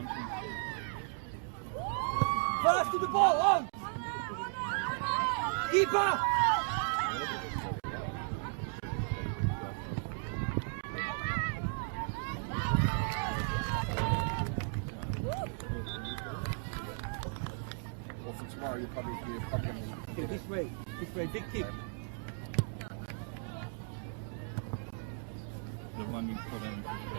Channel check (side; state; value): left; silent; 54 dB below the other